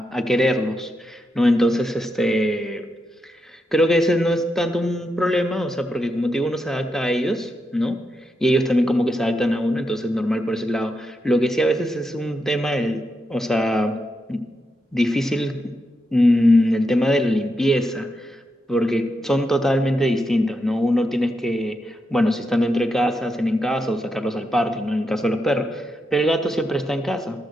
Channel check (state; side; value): normal; both; correlation 0.85